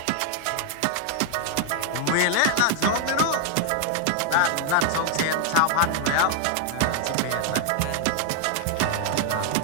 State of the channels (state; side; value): different; both; correlation 0.00